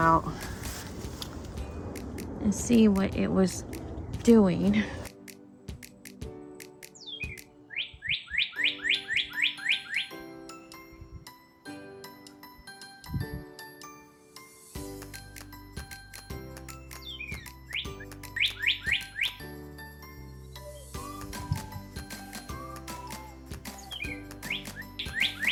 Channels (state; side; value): identical; both; correlation 1.00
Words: and see what it was doing.